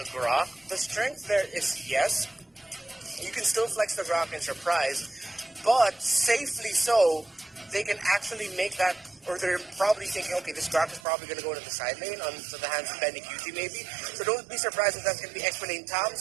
Grok, the strength there is yes. You can still flex the Grok and surprise, but safely so, they can actually make that, or they're probably thinking, okay, this Grok is probably going to go to the side lane, onto the hands of Benny QT maybe. So don't be surprised if that's going to be Expo lane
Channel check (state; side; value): drops out; left; at 11.0 s